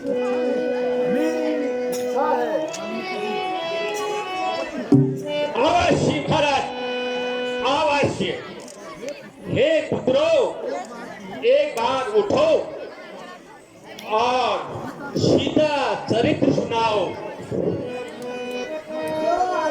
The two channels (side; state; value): both; identical; correlation 1.00